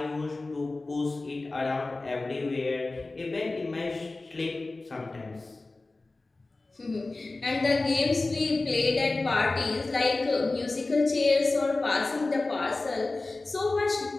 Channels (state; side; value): quieter; right; 3.3 dB